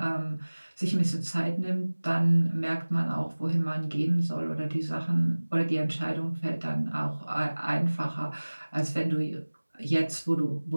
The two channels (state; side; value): inverted; both; correlation -1.00